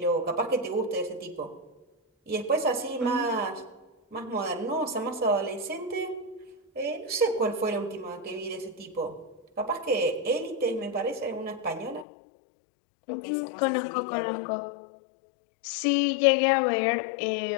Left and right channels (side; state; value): right; drops out; at 12.1 s